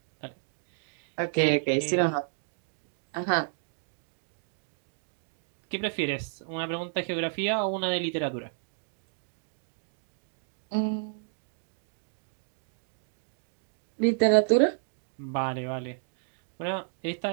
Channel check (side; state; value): left; silent; digital silence